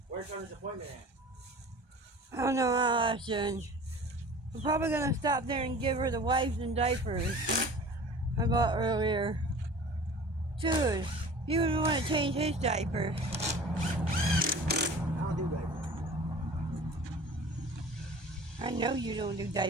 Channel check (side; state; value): left; late; 1.2 ms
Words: Where's Tony's appointment at? I don't know how soon. I'm probably gonna stop there and give her the wipes and diapers I bought earlier. Dude, you would want to change his diaper. I don't do diapers. I know you don't do